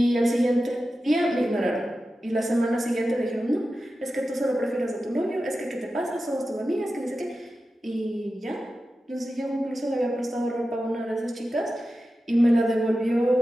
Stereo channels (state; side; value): normal; both; correlation 0.93